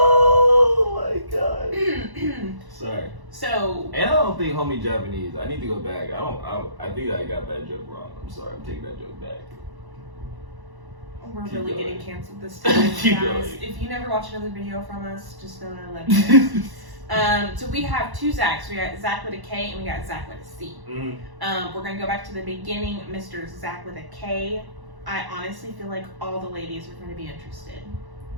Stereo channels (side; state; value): left; late; 1.1 ms